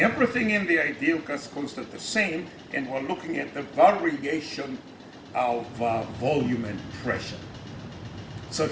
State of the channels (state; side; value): identical; both; correlation 1.00